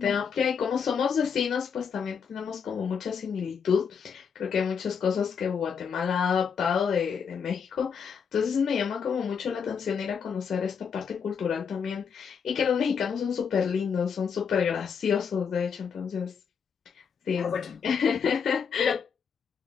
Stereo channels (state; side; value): quieter; right; 6.6 dB